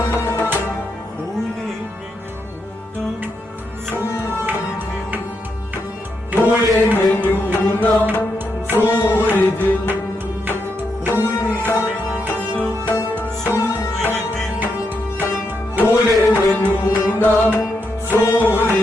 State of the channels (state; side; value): normal; both; correlation 0.82